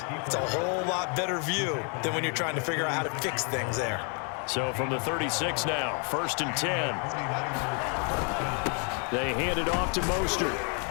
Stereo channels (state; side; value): quieter; right; 38.3 dB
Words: it's a whole lot better view than when you're trying to figure out how to fix things there. So from the 36 now, 1st and 10. They hand it off to Mostert.